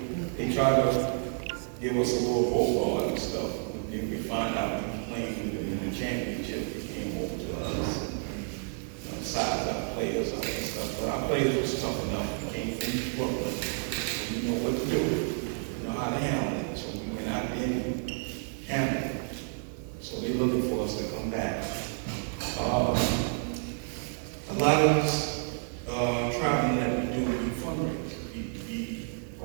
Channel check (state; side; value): silent; left; 58 dB below the other